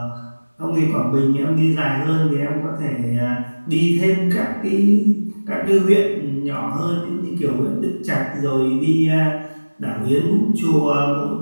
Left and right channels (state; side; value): inverted; both; correlation -1.00